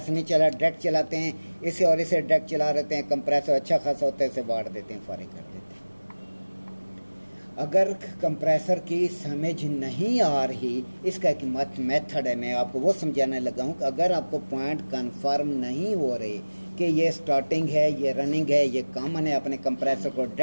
नहीं चला डायरेक्ट चलाते हैं, इसे और इसे डायरेक्ट चला रहते हैं। कंप्रेसर अच्छा खासा होता है, इसे बांट देते हैं, फारिग कर देते हैं। अगर कंप्रेसर की समझ नहीं आ रही, इसका एक मेथड है, मैं आपको वो समझाने लगा हूँ कि अगर आपको पॉइंट कन्फर्म नहीं हो रहे कि ये स्टार्टिंग है, ये रनिंग है, ये कॉमन है, अपने कंप्रेसर को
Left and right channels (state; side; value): inverted; both; correlation -1.00